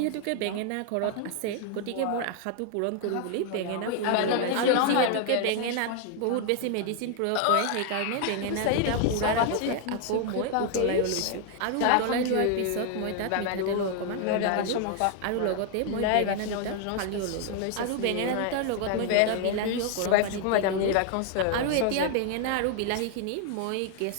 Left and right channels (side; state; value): both; different; correlation 0.00